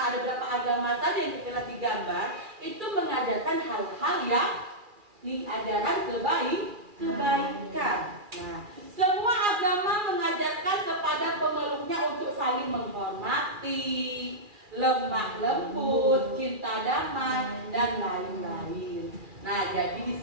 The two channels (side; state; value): left; late; 2.4 ms